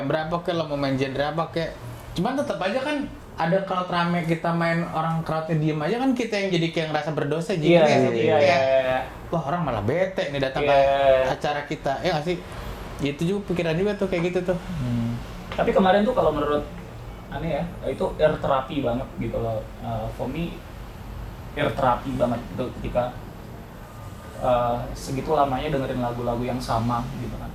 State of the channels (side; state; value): both; identical; correlation 1.00